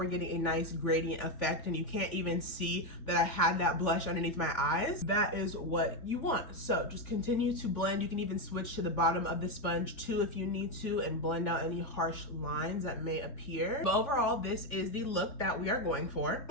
getting a nice gradient effect, and you can't even see that I had that blush underneath my eyes. That is what you want. So just continue to blend. You can even switch to the bottom of the sponge too if you need to and blend out any harsh lines that may appear. But overall, this is the look that we are going for.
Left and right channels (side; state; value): right; late; 3.5 ms